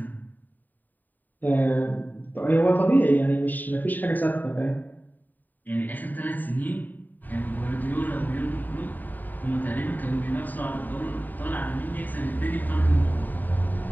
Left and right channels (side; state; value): right; late; 0.087 ms